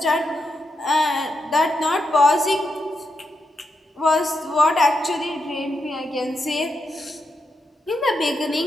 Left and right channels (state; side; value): normal; both; correlation 0.84